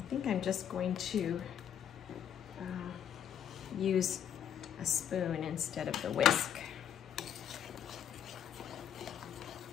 think I'm just going to use a spoon instead of the whisk.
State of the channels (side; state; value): right; quieter; 9.3 dB